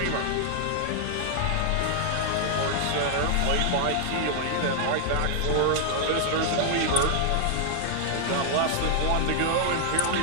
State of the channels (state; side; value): different; both; correlation -0.01